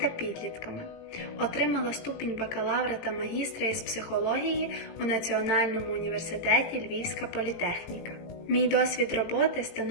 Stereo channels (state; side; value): late; right; 18 ms